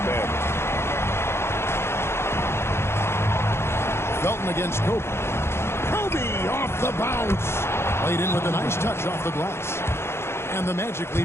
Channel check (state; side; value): late; right; 0.12 ms